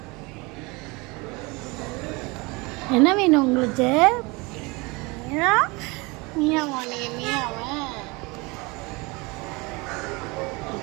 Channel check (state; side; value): quieter; left; 25.9 dB